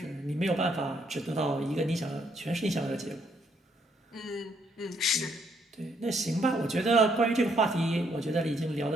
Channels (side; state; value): both; normal; correlation 0.71